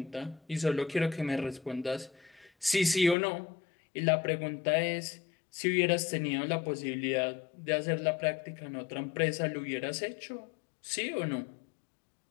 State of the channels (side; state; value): right; drops out; at 3.2 s